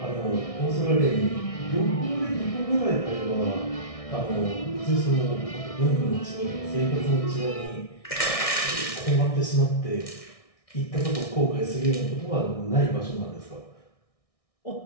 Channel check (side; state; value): right; late; 1.6 ms